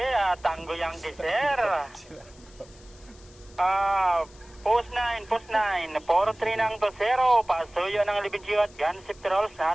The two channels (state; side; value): noise; left; hiss, 25 dB below the sound